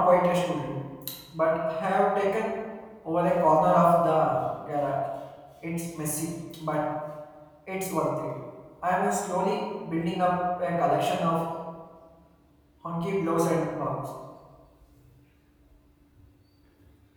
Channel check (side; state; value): both; identical; correlation 1.00